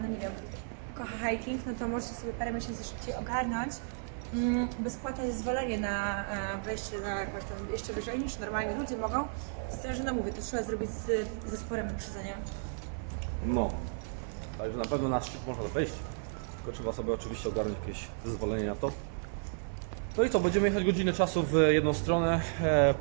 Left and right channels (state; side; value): silent; left; 56 dB below the other